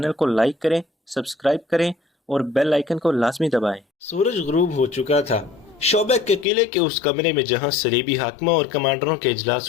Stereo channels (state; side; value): drops out; right; at 6.5 s